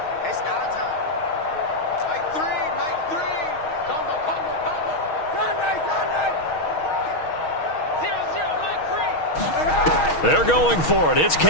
It's our time. Mike 3. Combo. Sunday. 0-0, Mike 3. They're going for it. It's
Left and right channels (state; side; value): late; right; 6.3 ms